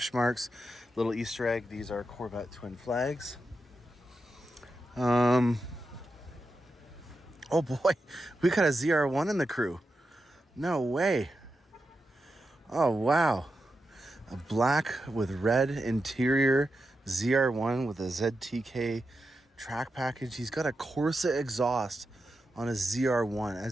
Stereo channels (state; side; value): normal; both; correlation 0.88